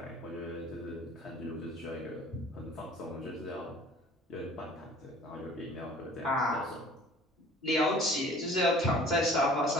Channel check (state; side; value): normal; both; correlation 0.49